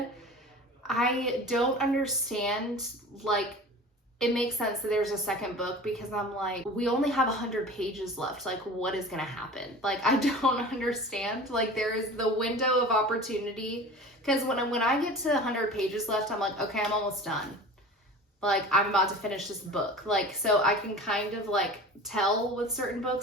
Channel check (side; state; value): both; normal; correlation 0.38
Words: I don't understand, like, it makes sense that there's a second book because I'm like, we only have 100 pages left. Like, what is going to happen? Like, I don't understand. Like, there is the window of opportunity. Because when I get to 100 pages left, I'm like, okay, I'm almost done. Like, I'm about to finish this book. Like, so I can kind of, like, tell with certain